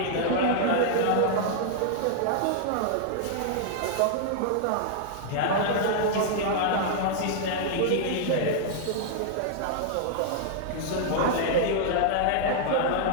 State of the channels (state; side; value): different; both; correlation -0.01